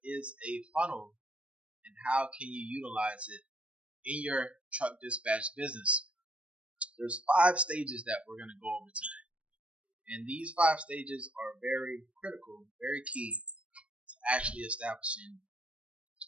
is a funnel and how can you utilize it in your truck dispatch business. There's 5 stages that we're going to go over today. And these 5 stages are very critical, very key to actually establishing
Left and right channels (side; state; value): left; late; 0.061 ms